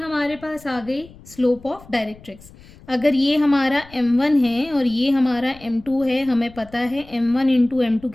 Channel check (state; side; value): noise; left; rumble, 22 dB below the sound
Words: पास आ गई स्लोप ऑफ डायरेक्ट्रिक्स। अगर ये हमारा m1 है और ये हमारा m2 है, हमें पता है m1 इंटू m2